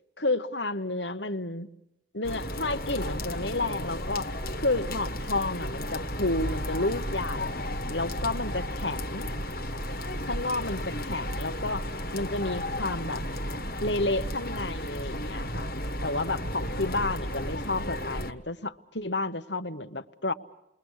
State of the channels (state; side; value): normal; both; correlation 0.00